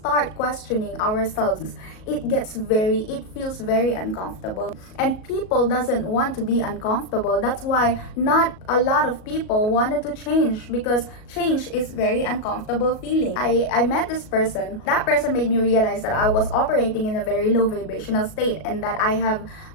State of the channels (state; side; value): late; right; 37 ms